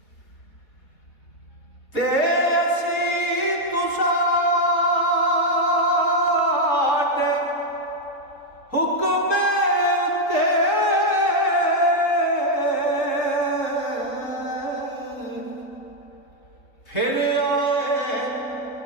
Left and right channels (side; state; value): right; late; 3.7 ms